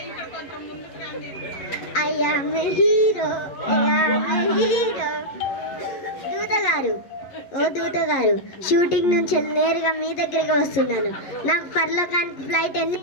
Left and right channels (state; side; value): late; right; 11 ms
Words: దూత గారు, షూటింగ్ నుంచి నేరుగా మీ దగ్గరికి వస్తున్నాను. నాకు పరలోకానికి ఫ్లైట్ ఎన్ని?